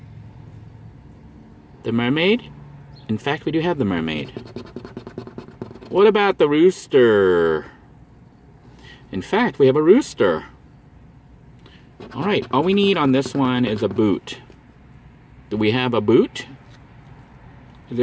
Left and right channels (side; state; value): both; identical; correlation 1.00